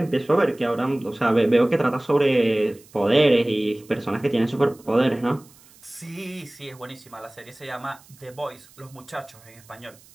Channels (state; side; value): noise; right; hiss, 26 dB below the sound